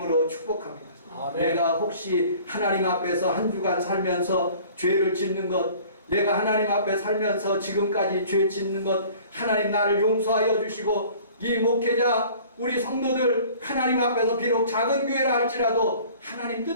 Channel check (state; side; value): inverted; both; correlation -0.49